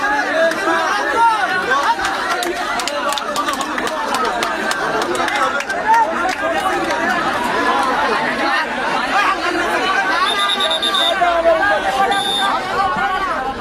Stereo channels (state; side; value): identical; both; correlation 1.00